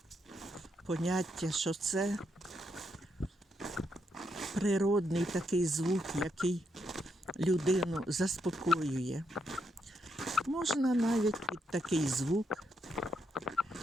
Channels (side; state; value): both; normal; correlation 0.80